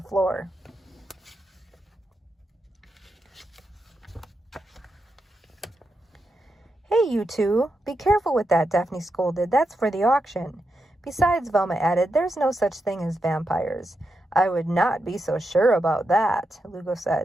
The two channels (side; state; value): both; normal; correlation 0.86